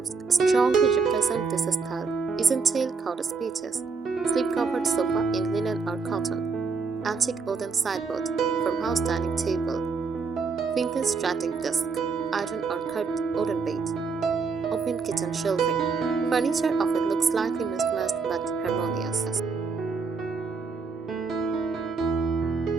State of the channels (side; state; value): left; quieter; 4.8 dB